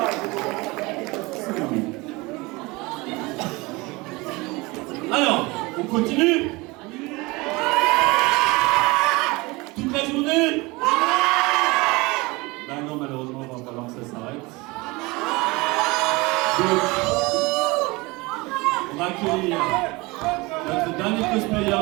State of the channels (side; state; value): left; quieter; 23.9 dB